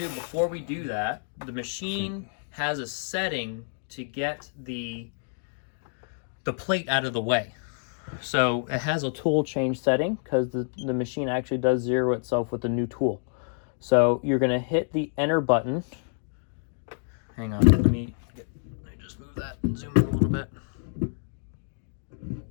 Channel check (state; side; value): silent; right; digital silence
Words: do before we do that, the machine has a setting to get the plate out of the way. So it has a tool change setting because the machine actually does zero itself with the new tool. So you're going to hit the enter button. Hang on, let me just move that and zoom in a little bit.